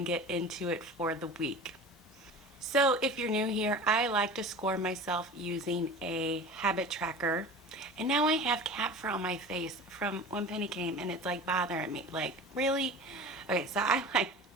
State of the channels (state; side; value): normal; both; correlation 0.35